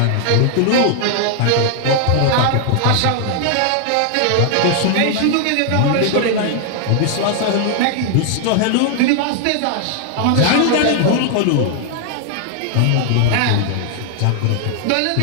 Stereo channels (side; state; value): both; different; correlation 0.00